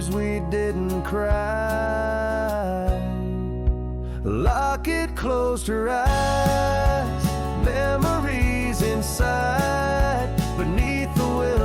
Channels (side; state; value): both; identical; correlation 1.00